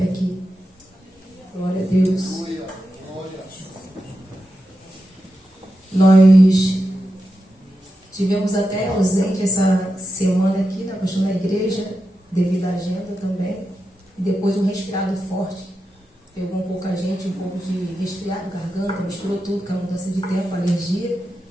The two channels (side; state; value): both; normal; correlation 0.89